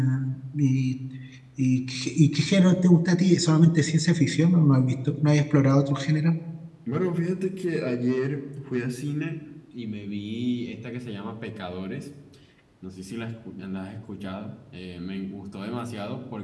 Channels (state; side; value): identical; both; correlation 1.00